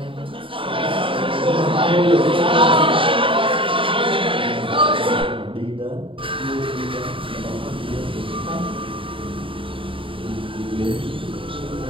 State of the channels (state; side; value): late; left; 0.25 ms